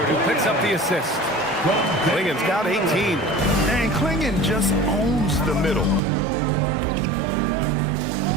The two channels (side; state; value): left; drops out; at 6.0 s